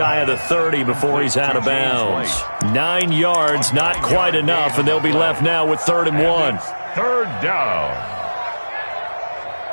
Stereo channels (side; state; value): both; inverted; correlation -1.00